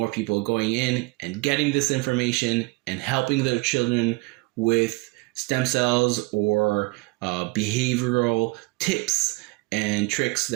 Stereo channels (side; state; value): left; quieter; 24.8 dB